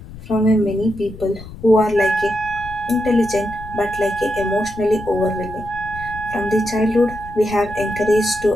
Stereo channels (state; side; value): noise; left; rumble, 15 dB below the sound